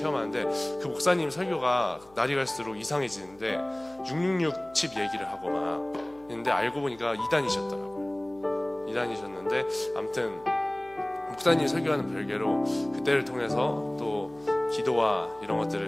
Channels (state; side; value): noise; left; hum, 27 dB below the sound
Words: 그 목사님 설교가 날이 갈수록 이상해지는데 666 칩 얘기를 하고 막 있는데 알고 보니까 이단이셨더라고요. 이단이셨는데 아무튼 목사님 설교하는 별개로 그때를 통해서 또 기도와 이런